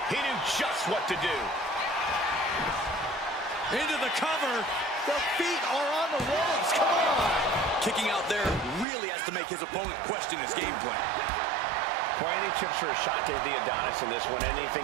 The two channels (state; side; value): drops out; left; at 8.8 s